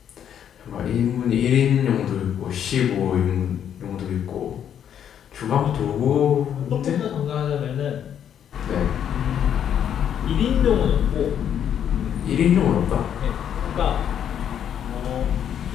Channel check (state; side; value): quieter; right; 9.2 dB